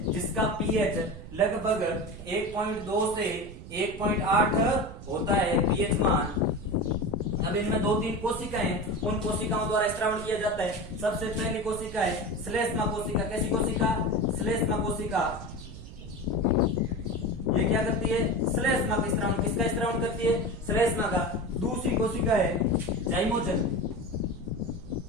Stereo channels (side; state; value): right; noise; rumble, 13 dB below the sound